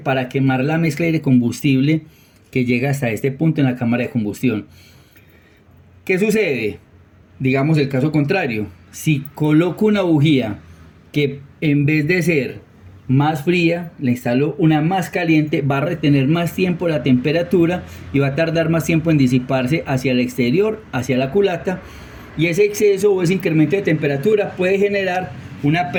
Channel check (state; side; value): identical; both; correlation 1.00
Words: quemar la mezcla de combustible que llega hasta este punto en la cámara de combustión. ¿Qué sucede? Digamos el caso contrario. Si coloco una bujía que en vez de ser más fría, le instalo una más caliente, va a retener más tiempo la temperatura y va a tardar más tiempo en disiparse hacia el exterior, hacia la culata, y ese exceso o ese incremento de temperatura puede generar una